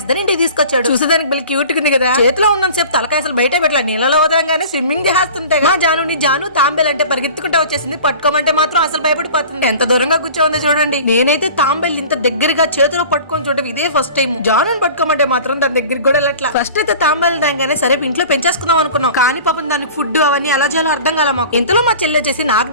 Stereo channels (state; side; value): inverted; both; correlation -0.41